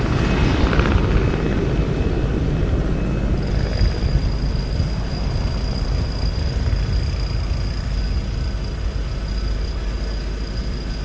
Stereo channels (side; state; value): both; identical; correlation 1.00